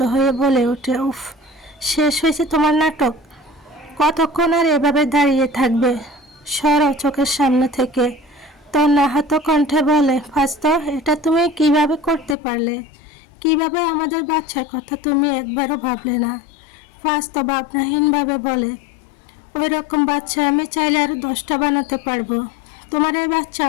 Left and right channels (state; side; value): drops out; right; at 12.4 s